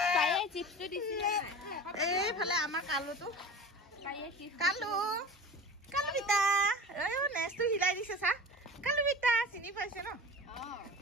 এইফালে আমাৰ কালুটো, কালু বিতা নেচটো হিলাই দিছে চা। কালু বিতা চিনি পাইছে ন?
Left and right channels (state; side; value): normal; both; correlation 0.35